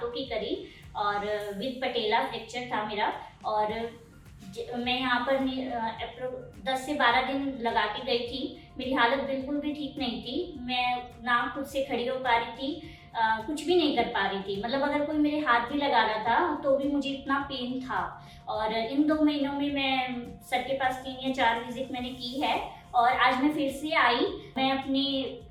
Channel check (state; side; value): identical; both; correlation 1.00